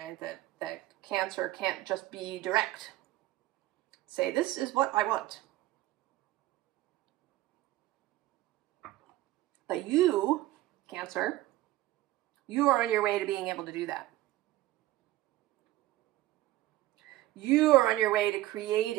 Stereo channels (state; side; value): quieter; left; 16.4 dB